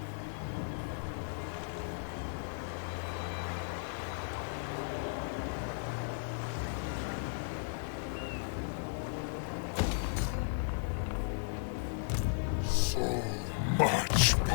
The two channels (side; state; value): right; silent; 54 dB below the other